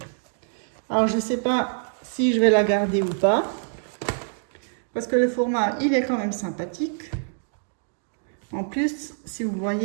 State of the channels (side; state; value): left; silent; digital silence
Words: Alors je ne sais pas si je vais la garder ou pas. Parce que le format, il est quand même sympathique. En plus, si vous